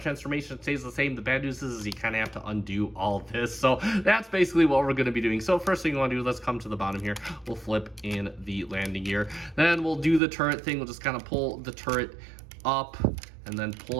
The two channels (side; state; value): left; drops out; at 10.2 s